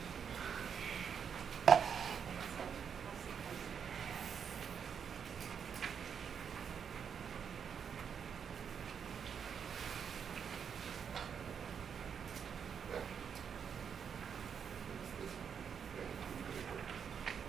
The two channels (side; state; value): left; quieter; 7.2 dB